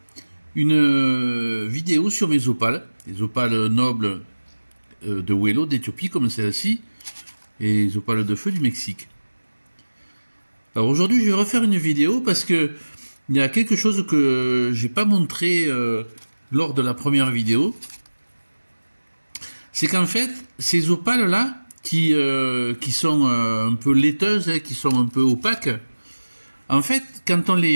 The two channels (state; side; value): inverted; both; correlation -1.00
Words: une vidéo sur mes opales, les opales nobles de Huelva d'Éthiopie, comme celle-ci, et les opales de feu du Mexique. Alors aujourd'hui, je vais refaire une vidéo parce que il y a quelque chose que j'ai pas montré lors de la première vidéo. C'est qu'en fait, ces opales-là, qui sont un peu laiteuses, qui sont un peu opaques, en fait, quand on